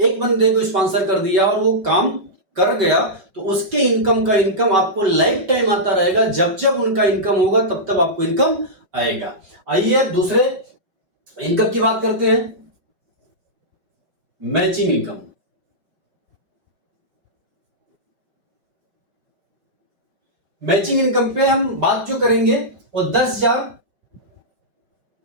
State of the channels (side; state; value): left; late; 5.3 ms